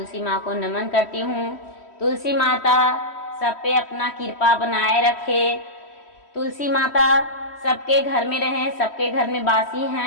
माँ को नमन करती हूँ। तुलसी माता सब पे अपना कृपा बनाए रखे। तुलसी माता सबके घर में रहे, सबके घर में बासी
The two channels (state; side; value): late; right; 3.1 ms